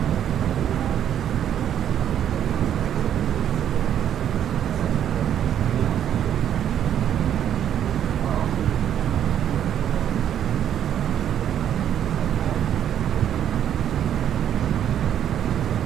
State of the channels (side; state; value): left; quieter; 9.9 dB